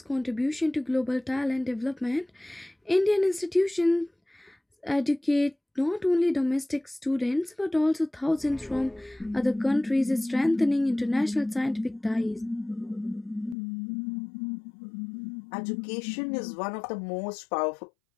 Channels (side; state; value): right; drops out; at 13.6 s